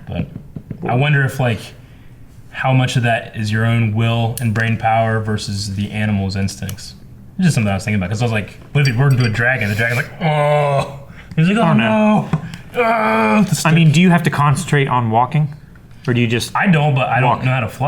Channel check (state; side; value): identical; both; correlation 1.00